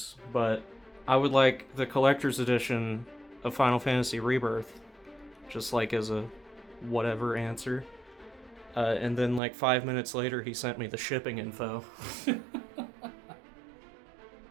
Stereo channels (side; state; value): left; drops out; at 9.4 s